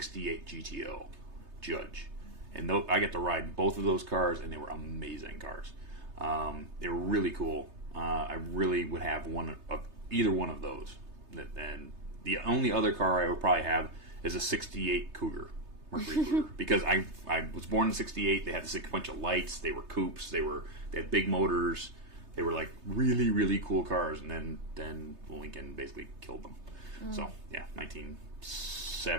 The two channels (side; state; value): left; late; 3.3 ms